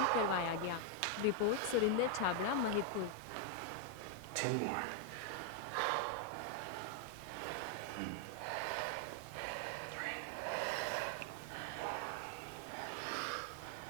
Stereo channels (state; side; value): different; both; correlation 0.00